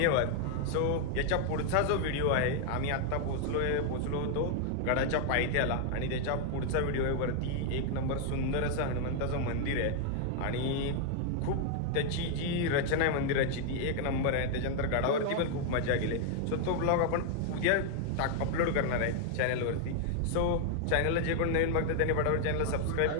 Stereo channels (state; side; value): different; both; correlation 0.00